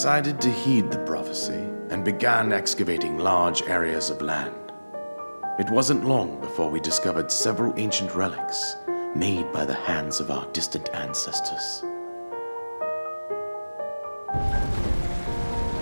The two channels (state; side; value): inverted; both; correlation -1.00